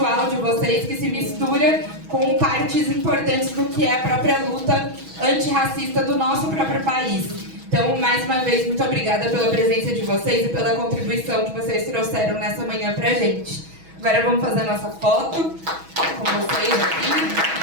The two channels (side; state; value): left; late; 6.2 ms